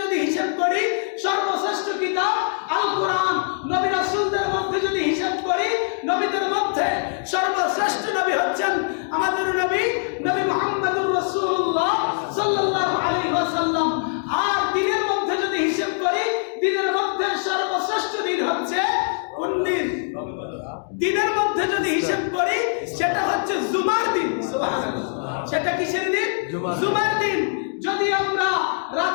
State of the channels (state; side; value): silent; right; digital silence